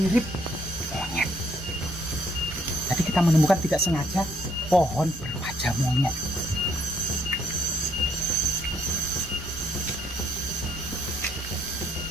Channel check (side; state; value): both; normal; correlation 0.69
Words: monyet. Jadi kita menemukan tidak sengaja pohon berwajah monyet.